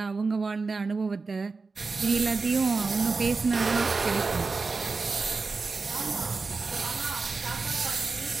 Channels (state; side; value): quieter; left; 4.2 dB